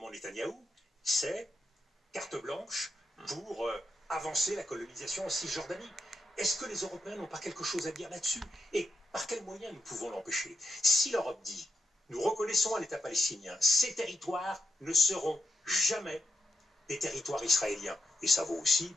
Netanyahou, c'est carte blanche pour avancer la colonisation en Cisjordanie. Est-ce que les Européens n'ont pas quelque chose à dire là-dessus? Et par quels moyens nous pouvons l'empêcher? Si l'Europe dit, nous reconnaissons un État palestinien, ces territoires ne seront jamais des territoires israéliens, et ça vaut aussi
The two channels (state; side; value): normal; both; correlation 0.85